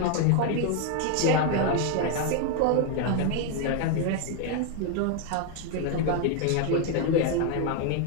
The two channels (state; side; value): different; both; correlation 0.00